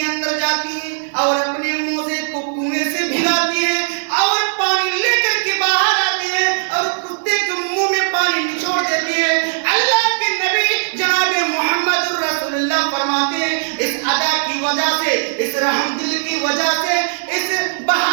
اندر جاتی ہے اور اپنے موزے کو کنویں سے بھگاتی ہے اور پانی لے کر کے باہر آتی ہے اور کتے کے منہ میں پانی نچوڑ دیتی ہے۔ اللہ کے نبی جناب محمد رسول اللہ فرماتے ہیں اس ادا کی وجہ سے، اس رحم دل کی وجہ سے، اس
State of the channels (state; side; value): silent; left; digital silence